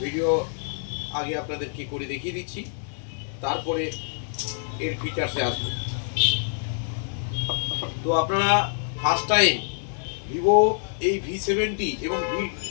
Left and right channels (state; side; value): silent; right; 61 dB below the other